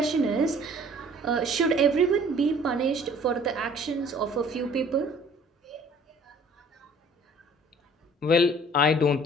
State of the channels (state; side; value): normal; both; correlation 0.53